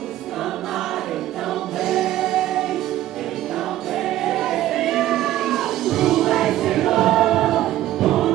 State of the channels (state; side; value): quieter; left; 14.1 dB